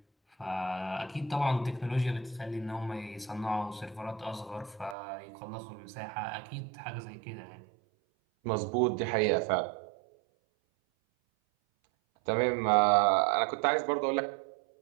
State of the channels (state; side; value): drops out; left; at 5.0 s